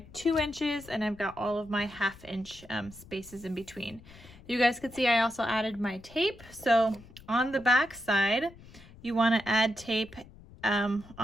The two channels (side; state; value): left; noise; rumble, 21 dB below the sound